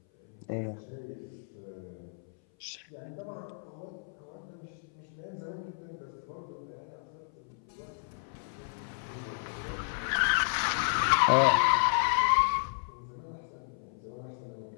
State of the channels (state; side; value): silent; right; 56 dB below the other